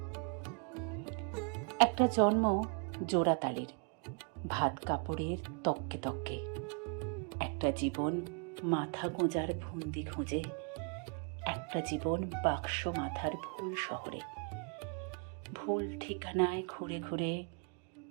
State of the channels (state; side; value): quieter; left; 38.3 dB